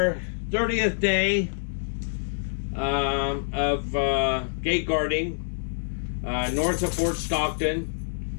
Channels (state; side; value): silent; right; digital silence